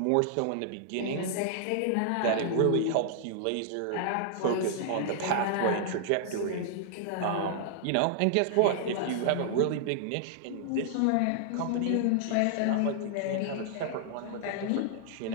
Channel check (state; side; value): different; both; correlation -0.01